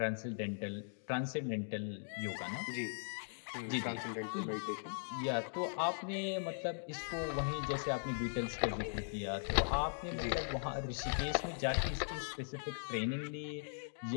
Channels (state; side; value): silent; right; digital silence